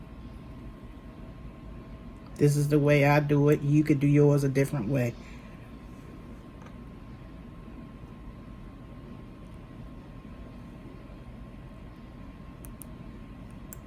This is the way I do it. You could do yours a different way.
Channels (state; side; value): identical; both; correlation 1.00